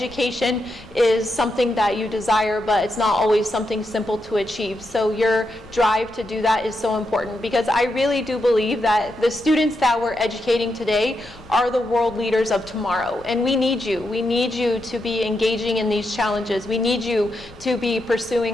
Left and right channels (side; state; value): left; noise; rumble, 22 dB below the sound